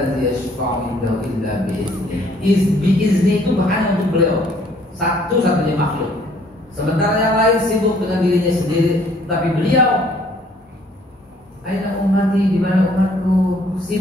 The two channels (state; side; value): normal; both; correlation 0.61